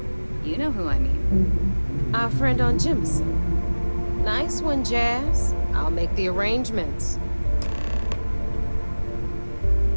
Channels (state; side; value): inverted; both; correlation -1.00